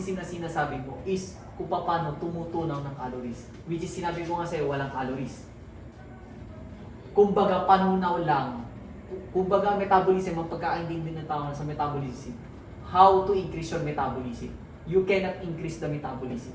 na sinasabi mo is kung paano tumutunaw ng calories. Which is sinabi ko nga sa'yo, walang calories. Kumbaga, panunaw lang. Kumbaga, metabolism, ang pagkaintindi ng tao sa metabolism. How to increase your metabolism. You cannot increase the metabolism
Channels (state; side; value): identical; both; correlation 1.00